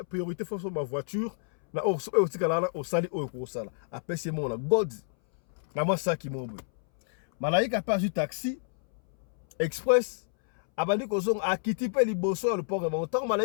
priorité faut ma voiture. Na au sali au sala. Après c'est mon God. Na moi ça qui m'oublie. Malaika pas du taxi express. Abandi kozong akiti pe liboso le port de temps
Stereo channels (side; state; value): right; silent; 59 dB below the other